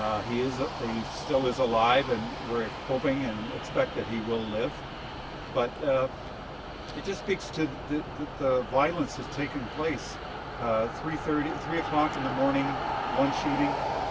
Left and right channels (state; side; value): identical; both; correlation 1.00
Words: He still is alive, and we're hoping and expect that he will live. But it just speaks to the violence that's taken place. 3 o'clock in the morning, one shooting.